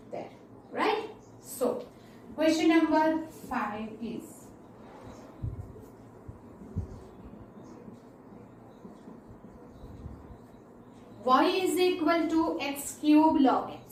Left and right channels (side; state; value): both; identical; correlation 1.00